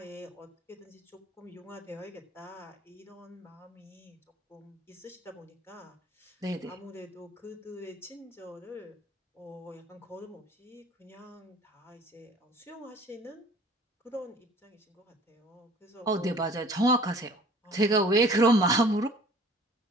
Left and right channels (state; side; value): normal; both; correlation 0.50